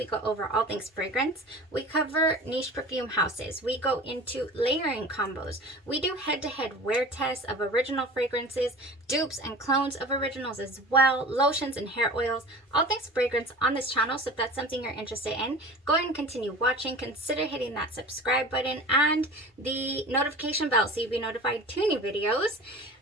go over all things fragrance. We cover niche perfume houses. We go into layering combos. We do head-to-head wear tests of original fragrances, dupes and clones of originals as well, lotions and hair oils, all things fragrance on this channel. So if that's something you're interested in, go ahead and continue watching. Consider hitting that subscribe button and the notification bell so you'll be notified to new videos.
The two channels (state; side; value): normal; both; correlation 0.38